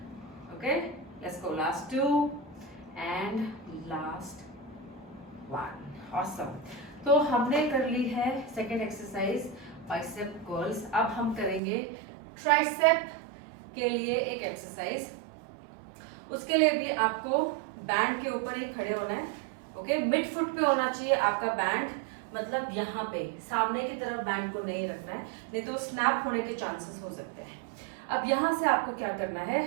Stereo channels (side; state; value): left; drops out; at 11.6 s